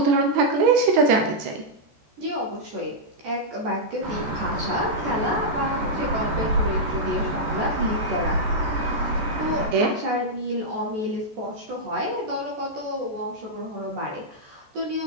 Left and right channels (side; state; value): left; late; 14 ms